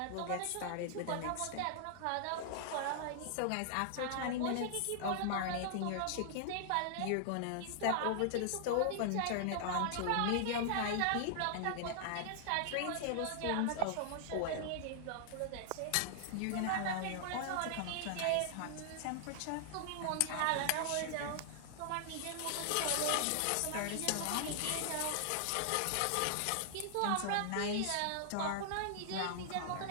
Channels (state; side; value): different; both; correlation -0.01